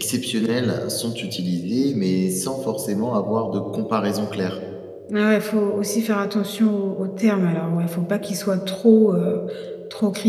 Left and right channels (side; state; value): both; identical; correlation 1.00